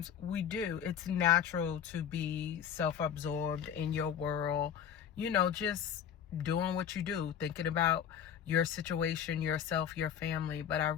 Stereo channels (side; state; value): right; quieter; 8.8 dB